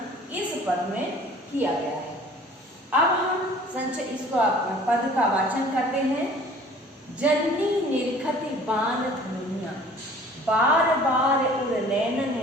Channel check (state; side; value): normal; both; correlation 0.49